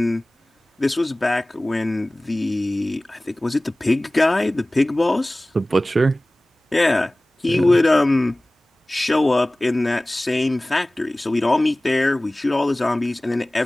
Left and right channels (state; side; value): normal; both; correlation 0.98